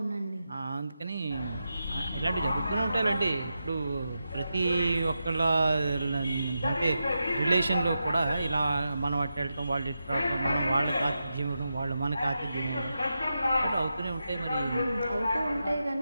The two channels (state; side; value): inverted; both; correlation -0.88